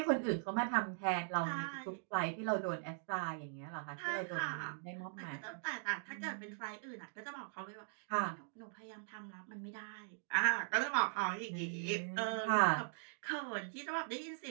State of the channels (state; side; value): silent; left; digital silence